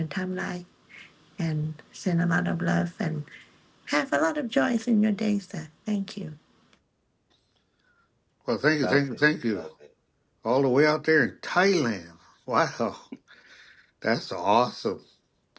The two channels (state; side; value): identical; both; correlation 1.00